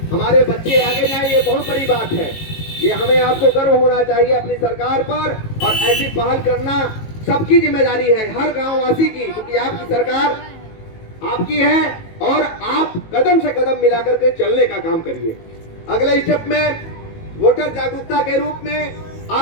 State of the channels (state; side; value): late; right; 18 ms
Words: हमारे बच्चे आगे जाए, ये बहुत बड़ी बात है। ये हमें आपको गर्व होना चाहिए अपनी सरकार पर, और ऐसी पहल करना सबकी जिम्मेदारी है, हर गांव वासी की, क्योंकि आपकी सरकार आपकी है और आप कदम से कदम मिलाकर के चलने का काम करिए। अगले स्टेप में वोटर जागरूकता के रूप में